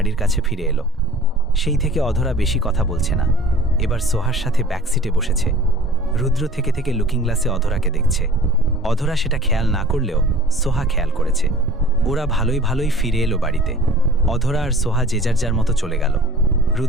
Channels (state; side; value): normal; both; correlation 0.47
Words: কাছে ফিরে এলো। সেই থেকে অধরা বেশি কথা বলছে না। এবার সোহার সাথে ব্যাকসিটে বসেছে। রুদ্র থেকে থেকে লুকিং গ্লাসে অধরাকে দেখছে। অধরা সেটা খেয়াল না করলেও সোহা খেয়াল করেছে। ওরা ভালোই ভালোই ফিরে এলো বাড়িতে। অধরা আর সোহা যে যার যার মতো চলে গেল।